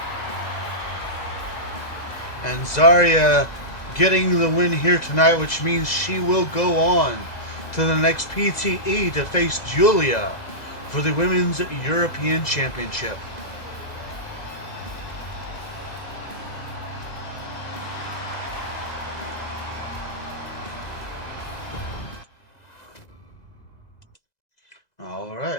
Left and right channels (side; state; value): right; late; 2.0 ms